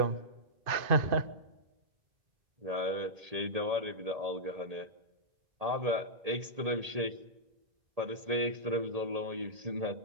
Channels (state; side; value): late; left; 1.8 ms